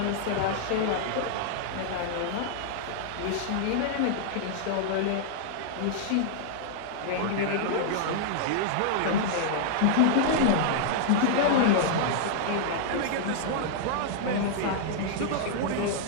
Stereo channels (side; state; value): both; different; correlation -0.01